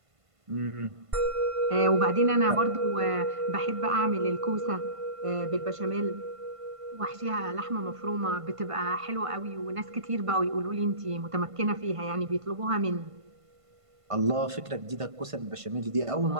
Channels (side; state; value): left; late; 1.5 ms